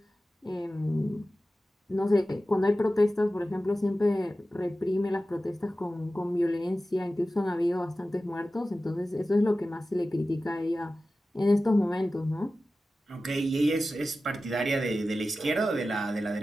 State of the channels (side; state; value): both; normal; correlation 0.94